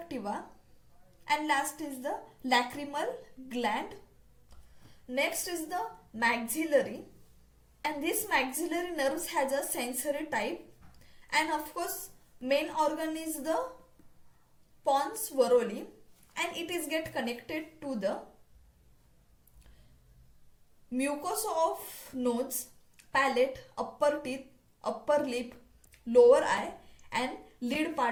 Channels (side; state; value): both; identical; correlation 1.00